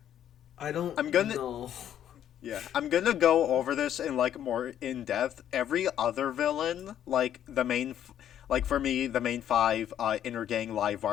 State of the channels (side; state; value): right; quieter; 10.5 dB